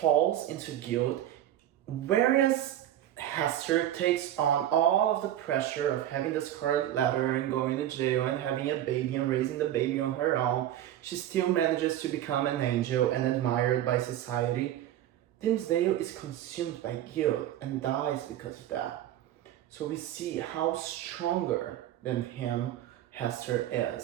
into guilt, whereas Hester takes on all of the pressure of having the scarlet letter and going to jail and having a baby and raising the baby on her own. She still manages to become an angel and admired by society. Dimmesdale is consumed by guilt and dies because of that. So we see how stronger than him Hester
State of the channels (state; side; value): quieter; left; 12.2 dB